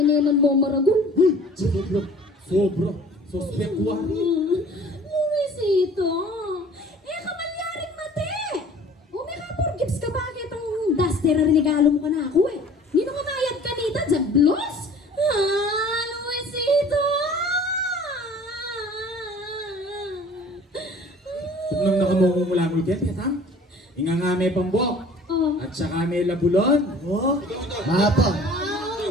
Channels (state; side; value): normal; both; correlation 0.48